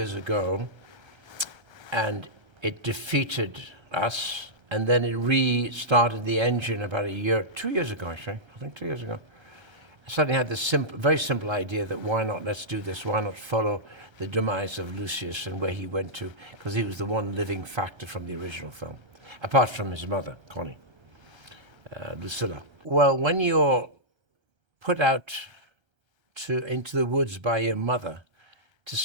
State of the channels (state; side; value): late; left; 1.3 ms